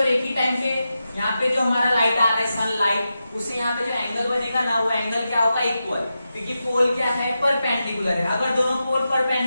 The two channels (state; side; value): inverted; both; correlation -0.90